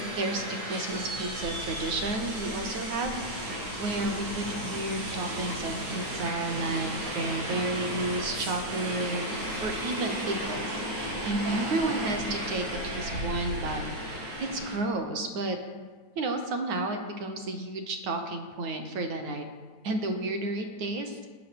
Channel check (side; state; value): left; late; 9.2 ms